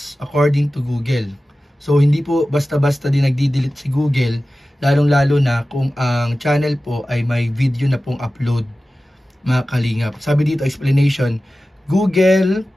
according to Google. So hindi po basta-basta din nagdi-delete si Google, lalong-lalo na kung ang channel po ay may video na pong upload mga Kalingap. Sabi dito, explanation, Google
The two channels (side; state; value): both; normal; correlation 0.95